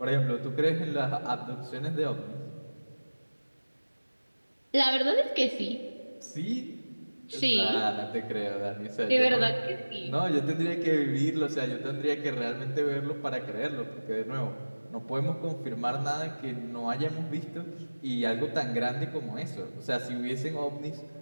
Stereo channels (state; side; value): inverted; both; correlation -1.00